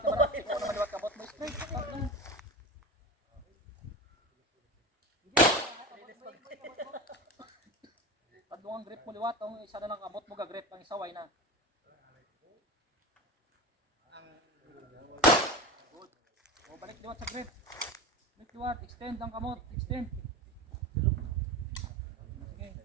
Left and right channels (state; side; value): normal; both; correlation 0.27